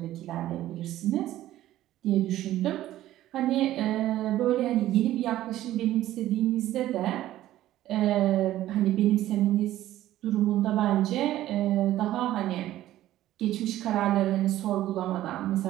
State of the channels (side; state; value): left; quieter; 14.0 dB